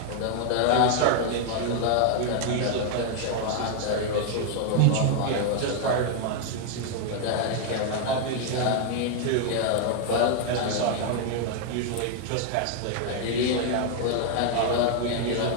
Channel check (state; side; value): different; both; correlation 0.00